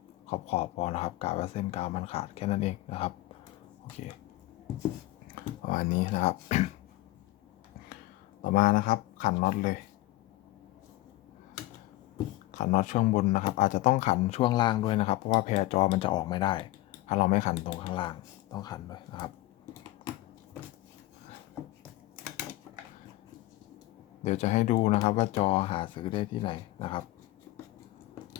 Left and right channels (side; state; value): right; quieter; 17.7 dB